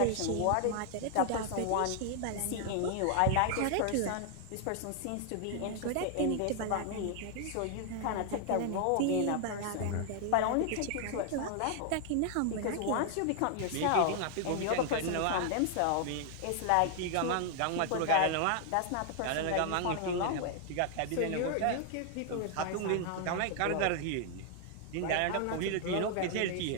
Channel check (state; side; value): different; both; correlation 0.00